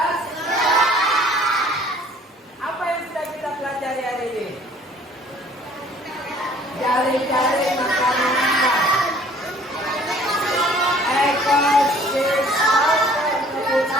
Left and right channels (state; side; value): normal; both; correlation 0.55